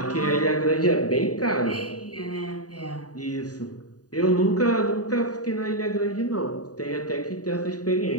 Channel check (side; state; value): right; late; 0.68 ms